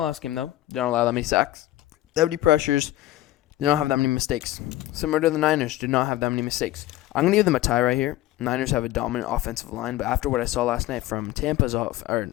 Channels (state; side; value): quieter; right; 15.7 dB